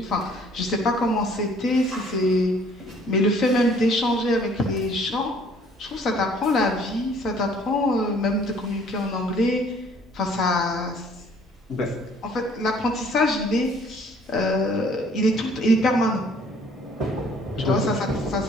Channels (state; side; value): normal; both; correlation 0.58